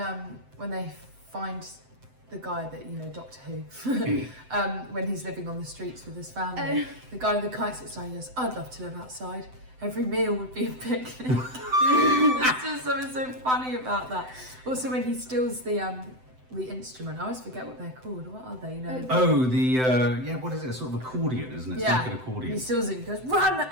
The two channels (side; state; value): left; late; 7.9 ms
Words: they find the guy that, Doctor Who, when he's living on the streets with his family. The guy with the kite sits down and goes, "I'd love to live outside. Every meal would be a picnic." There's just something so funny about that. Also when he steals the instrument, I always forget what they're called. What are they? What is it? Sort of accordion, isn't it? It's Yeah. like an accordion. He steals it and he goes, "Run!